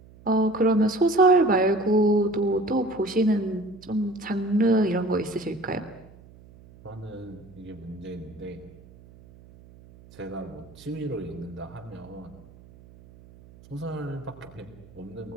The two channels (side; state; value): right; noise; hum, 23 dB below the sound